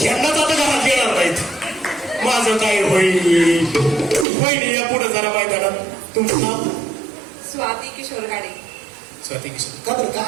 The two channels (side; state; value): left; drops out; at 4.2 s